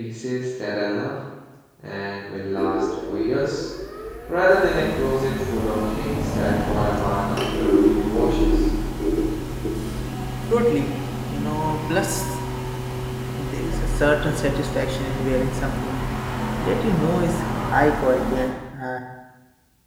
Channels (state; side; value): identical; both; correlation 1.00